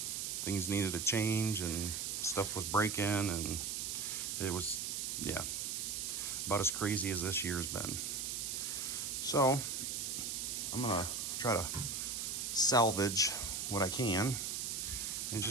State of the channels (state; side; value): noise; right; hiss, 2 dB below the sound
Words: things needed to change and stuff was breaking and it was, yeah, about as crazy as this year's been. So I'm gonna try to salvage what I can and